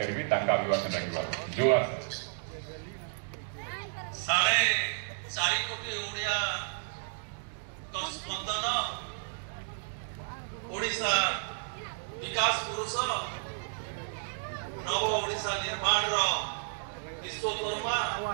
अभिभाषण रखा जो साढ़े 4 कोटी ओडिया तो स्पंदन ओडिशा विकास पुरुष नव ओडिशा निर्माण विश्वकर्मा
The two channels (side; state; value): left; silent; digital silence